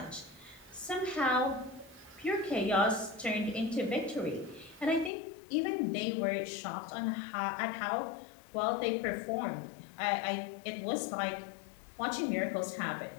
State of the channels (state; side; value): drops out; right; at 5.1 s